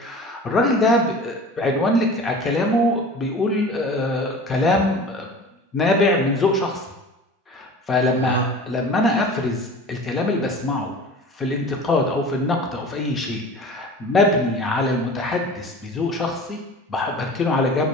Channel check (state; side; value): normal; both; correlation 0.39